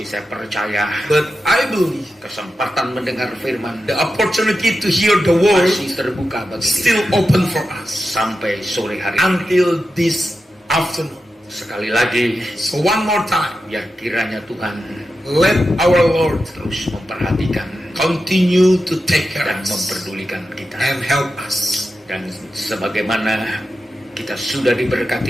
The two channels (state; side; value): normal; both; correlation 0.90